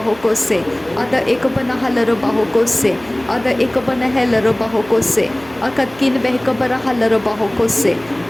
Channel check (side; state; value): right; noise; hum, 23 dB below the sound